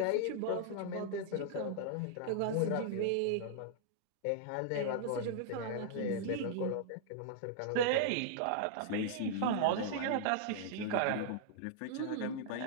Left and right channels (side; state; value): both; different; correlation -0.01